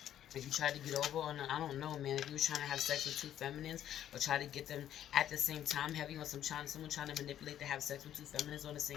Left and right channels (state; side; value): quieter; right; 11.0 dB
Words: If you tried to get over on, I don't know, man. If you were trying to have sex with 2 feminines or try to get them at the same time, heavy on someone trying to manipulate to have sex with 2 feminines on